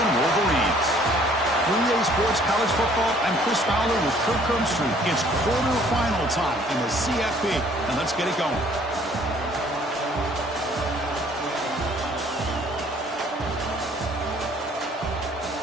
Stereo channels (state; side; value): normal; both; correlation 0.58